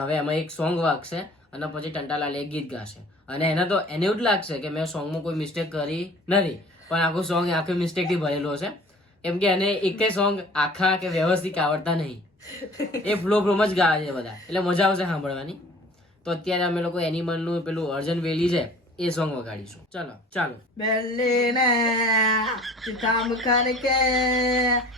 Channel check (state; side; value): normal; both; correlation 0.47